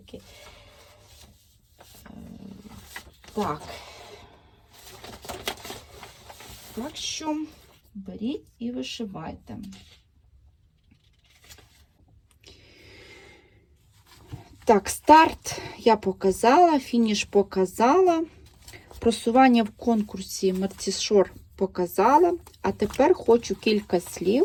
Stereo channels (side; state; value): both; identical; correlation 1.00